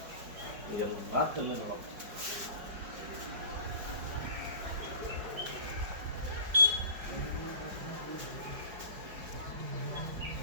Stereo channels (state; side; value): late; left; 5.1 ms